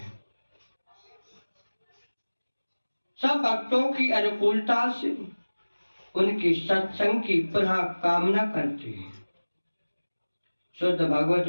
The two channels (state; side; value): inverted; both; correlation -1.00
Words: सब भक्तों की अनुकूलता से उनकी सत्संग की पुनः कामना करते हैं। शुद्ध भगवत